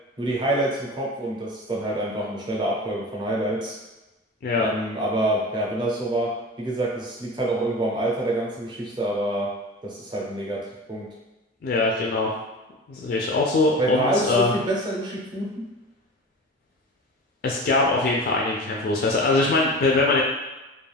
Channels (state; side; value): normal; both; correlation 0.33